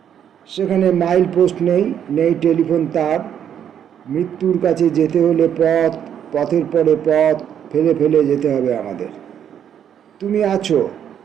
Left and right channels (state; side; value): quieter; left; 9.1 dB